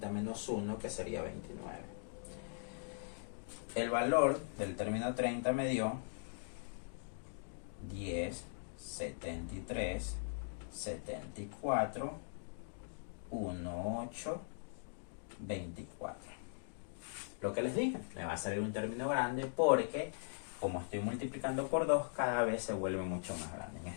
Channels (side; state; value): right; silent; digital silence